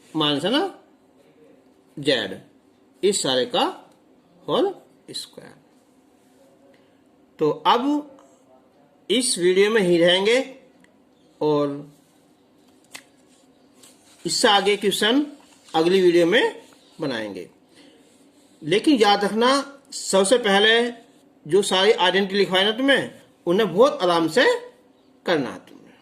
माइनस है ना, जेड, इस सारे का होल स्क्वायर। तो अब इस वीडियो में ही रहेंगे और इससे आगे क्वेश्चन अगली वीडियो में बनाएंगे। लेकिन याद रखना, सबसे पहले जो सारी आइडेंटिटी लिखवाए ना तुम्हें, उन्हें बहुत आराम से करना है।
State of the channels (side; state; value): both; identical; correlation 1.00